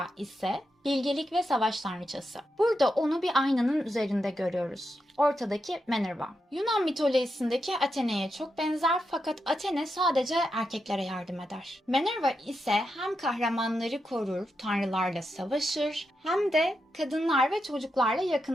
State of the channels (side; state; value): both; normal; correlation 0.86